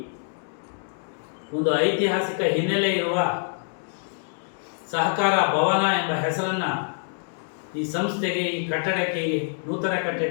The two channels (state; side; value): silent; right; digital silence